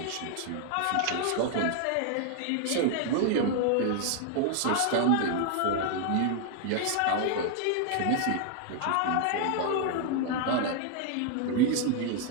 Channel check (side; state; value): both; different; correlation 0.00